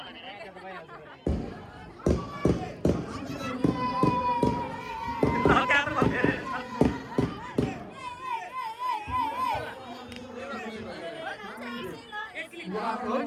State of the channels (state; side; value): identical; both; correlation 1.00